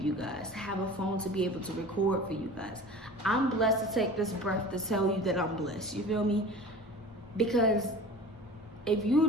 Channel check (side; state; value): both; normal; correlation 0.38